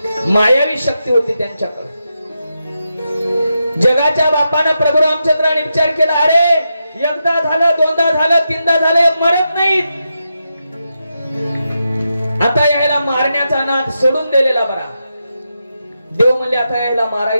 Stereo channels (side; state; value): both; inverted; correlation -0.87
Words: मायावी शक्ती होती त्यांच्याकडे. जगाच्या बापानं प्रभू रामचंद्राने विचार केला, अरे एकदा झालं, दोनदा झालं, तीनदा झालं, मरत नाहीत. आता यायला मारण्याचा नाद सोडून दिलेला बरा. देव म्हणले आता यायला